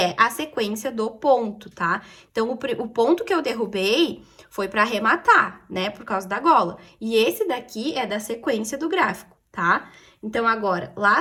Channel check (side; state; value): both; identical; correlation 1.00